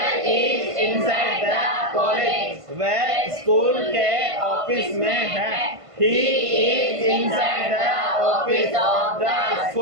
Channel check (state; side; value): late; left; 1.5 ms